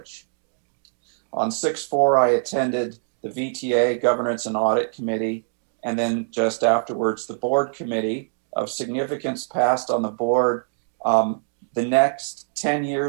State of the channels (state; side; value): silent; left; digital silence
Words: On 6/4, I attended the VTA Governance and Audit Committee, and then just afterwards, the board committee. Of significance passed on the board. The next 10